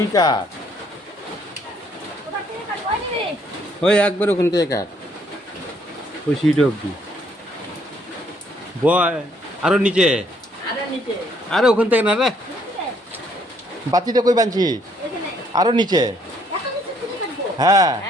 কাট ওই একবার ওখান থেকে কাট ওই সিট অব্দি বয় আরো নিচে আরে ওখান থেকে না রে বাতিটা কই বানছি আরো নিচে হ্যাঁ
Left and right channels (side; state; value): both; normal; correlation 0.67